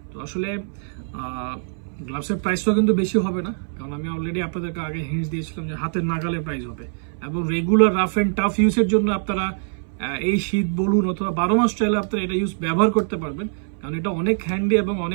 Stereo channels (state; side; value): silent; left; 61 dB below the other